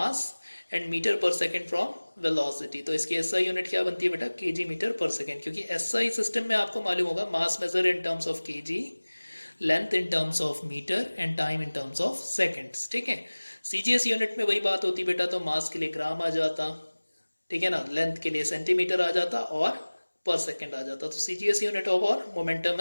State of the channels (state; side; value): inverted; both; correlation -1.00